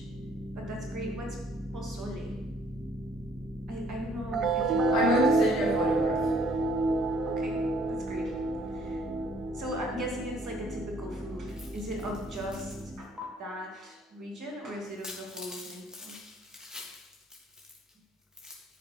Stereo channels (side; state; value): both; normal; correlation 0.62